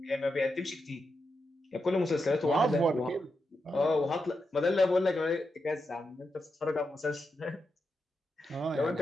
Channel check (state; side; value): normal; both; correlation 0.86